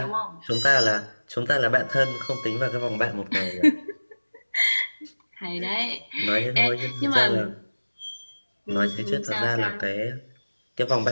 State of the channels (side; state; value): both; inverted; correlation -1.00